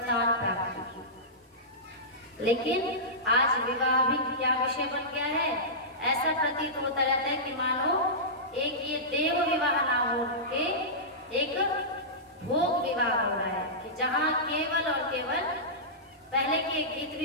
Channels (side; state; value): both; normal; correlation -0.16